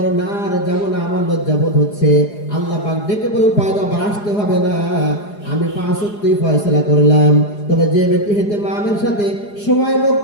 না আর যাবো না, আমার লজ্জাবোধ হচ্ছে। আল্লাহ পাক ডেকে বলেন, পয়গম্বর আসতে হবে না, আমি 5 ওয়াক্তই ফয়সালা করলাম। তবে যে ব্যক্তি ইহতিমামের সাথে সময়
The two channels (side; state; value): right; late; 4.8 ms